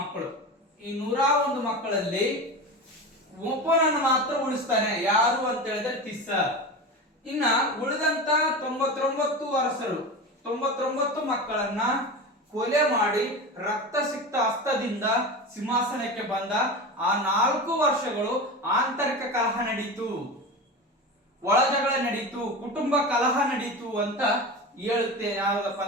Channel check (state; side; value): normal; both; correlation 0.26